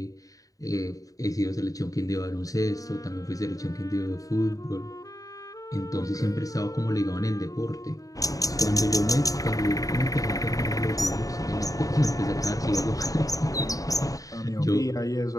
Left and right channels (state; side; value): late; right; 0.17 ms